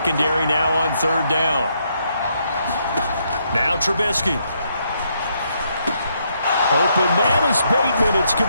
now on 3rd down. Now Trubisky. Open man is Bateman. It's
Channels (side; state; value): both; inverted; correlation -0.75